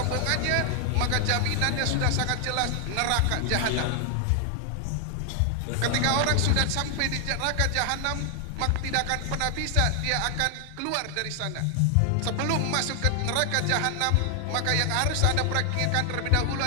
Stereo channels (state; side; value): different; both; correlation 0.00